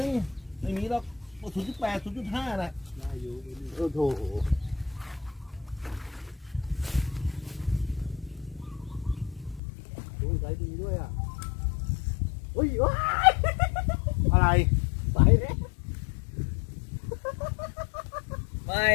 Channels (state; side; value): drops out; right; at 9.6 s